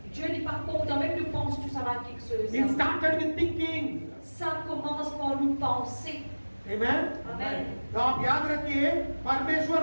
Dieu n'est pas content, même nous pense tout ça va quelque chose. It started with thinking. Ça commence par nous penser. Amen. Amen. तो आप याद रखिए,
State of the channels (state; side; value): inverted; both; correlation -1.00